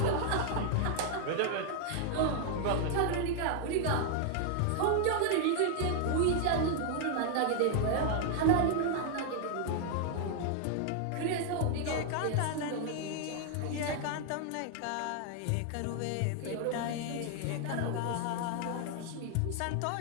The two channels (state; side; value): different; both; correlation 0.00